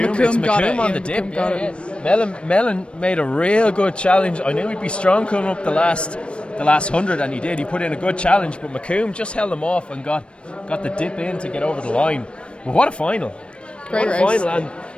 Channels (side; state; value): right; late; 0.058 ms